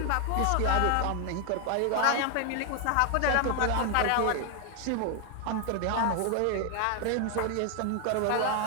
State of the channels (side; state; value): both; different; correlation 0.00